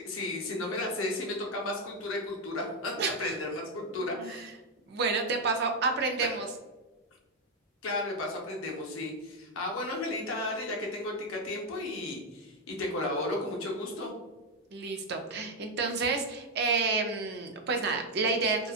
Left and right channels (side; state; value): both; normal; correlation 0.04